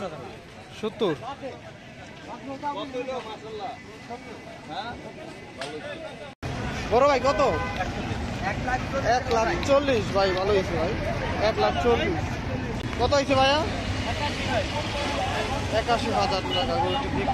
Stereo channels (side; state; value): both; identical; correlation 1.00